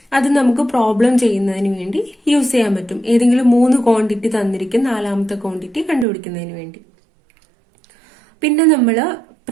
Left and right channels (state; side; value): drops out; left; at 6.1 s